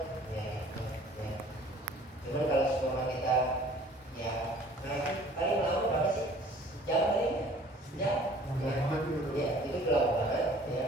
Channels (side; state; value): both; normal; correlation 0.52